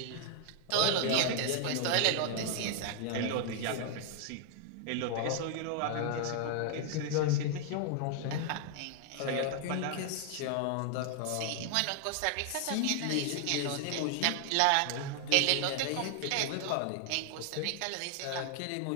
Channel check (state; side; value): different; both; correlation 0.00